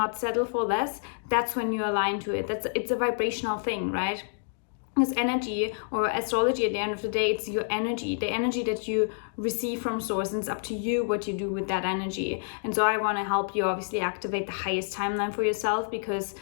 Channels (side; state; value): right; silent; digital silence